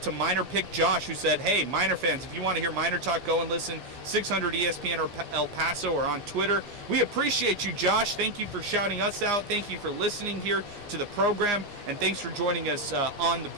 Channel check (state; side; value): late; left; 15 ms